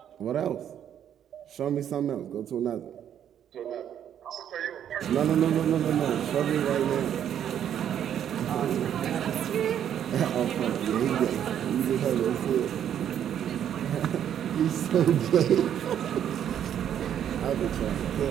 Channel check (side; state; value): left; quieter; 9.7 dB